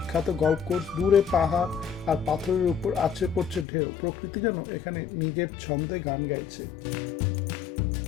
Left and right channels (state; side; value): drops out; right; at 3.7 s